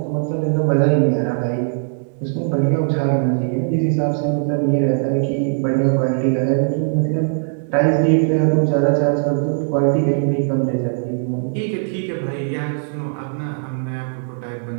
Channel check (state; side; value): silent; left; digital silence